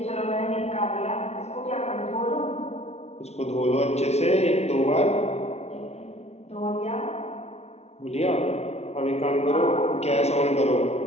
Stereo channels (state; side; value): late; right; 0.31 ms